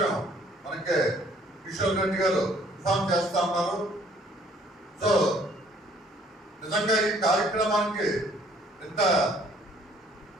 మనకి కిషోర్ రెడ్డి గారు ఇన్ఫార్మ్ చేస్తా ఉన్నారు. సో నిజంగా ఈ కార్యక్రమానికి ఇంత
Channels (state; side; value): normal; both; correlation 0.60